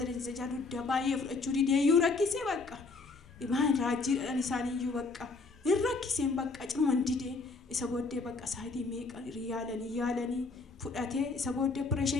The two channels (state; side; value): quieter; right; 4.0 dB